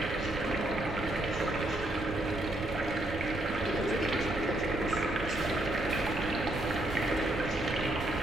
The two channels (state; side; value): noise; right; rumble, 9 dB below the sound